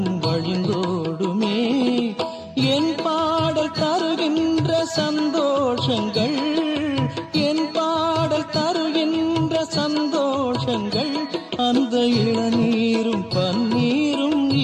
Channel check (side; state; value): both; identical; correlation 1.00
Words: வழிந்தோடுமே என் பாடல் தருகின்ற சந்தோஷங்கள் என் பாடல் தருகின்ற சந்தோஷங்கள் அந்த இளநீரும் பன்னீரும்